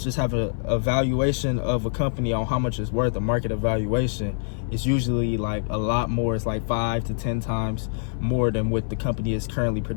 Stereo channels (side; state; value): right; silent; 58 dB below the other